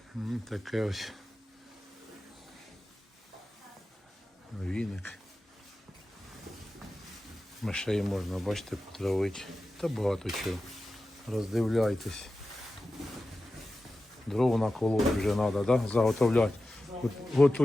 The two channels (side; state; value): both; normal; correlation 0.93